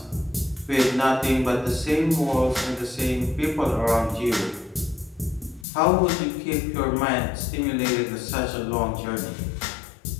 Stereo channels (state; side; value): drops out; right; at 5.7 s